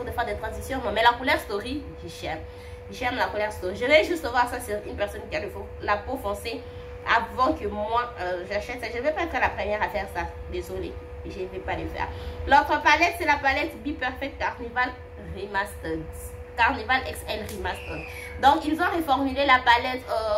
le phare de transition, non. Mais la couleur Story, j'aime. J'aime la couleur Story. Je vais juste voir ça sur une personne qui a la peau foncée avant que moi j'achète ça. Je ne vais pas être la première à faire ça. Désolée, je ne vais pas le faire. L'autre palette, c'est la palette Be Perfect Carnival Remastered. Carnival XL Remastered. Donc ils ont reformulé la palette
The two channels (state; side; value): identical; both; correlation 1.00